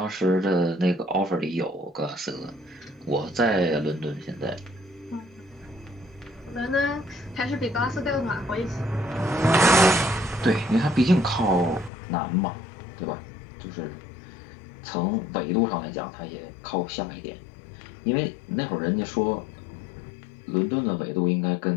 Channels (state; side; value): drops out; right; at 11.9 s